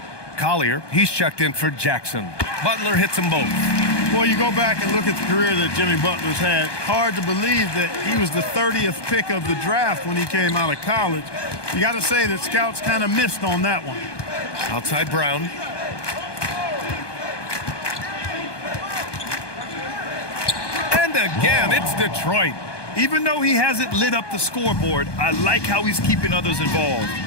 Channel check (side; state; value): right; late; 1.2 ms